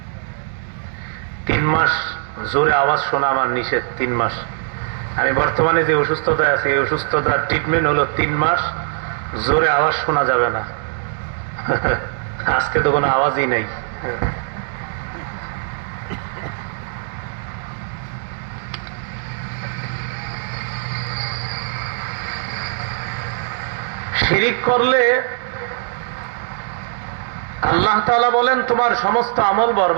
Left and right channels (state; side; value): silent; left; digital silence